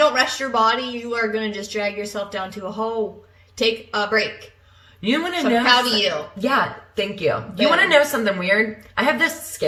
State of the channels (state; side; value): identical; both; correlation 1.00